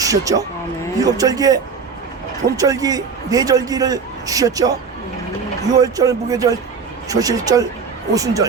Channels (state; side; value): quieter; left; 5.4 dB